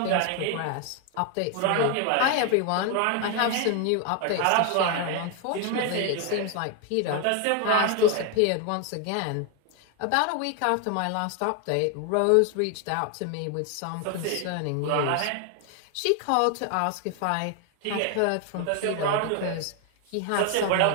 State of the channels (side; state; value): both; different; correlation 0.01